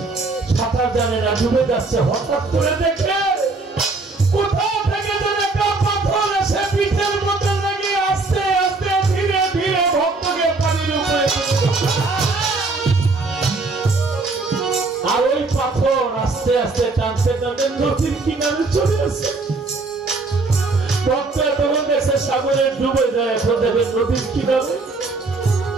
সাঁতার জানে না, ডুবে যাচ্ছে। হঠাৎ করে দেখে কোথাও থেকে যেন একটা পাথর এসে পিঠের মধ্যে লেগে আস্তে আস্তে ধীরে ধীরে ভক্তকে পানির উপরে, আর ওই পাথর আস্তে আস্তে টানতে টানতে নদীর কিনারে চলে আসে। ভক্ত তখন দেখছে সাগরে ডুবে যায়, এখন দেখে নদীর কিনারে।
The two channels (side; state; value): left; quieter; 3.6 dB